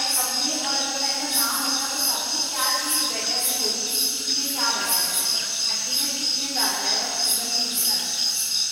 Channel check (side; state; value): both; identical; correlation 1.00